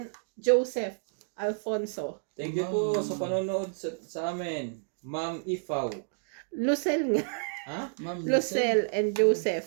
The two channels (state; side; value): silent; left; digital silence